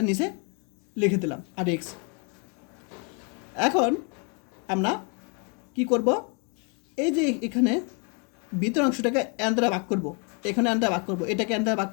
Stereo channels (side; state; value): right; quieter; 35.8 dB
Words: নিচে লিখে দিলাম আর x। এখন আমরা কি করব, এই যে এখানে ভিতর অংশটাকে n দ্বারা ভাগ করব, এখানে n দ্বারা ভাগ করব, এটাকে n দ্বারা ভাগ